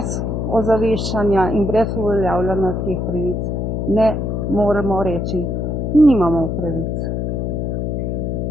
ozaveščanja in brez uveljavljanja teh pravic ne moremo reči, nimamo pravic,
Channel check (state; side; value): noise; left; hum, 1 dB below the sound